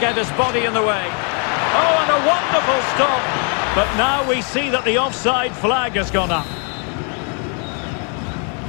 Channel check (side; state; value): right; quieter; 39.6 dB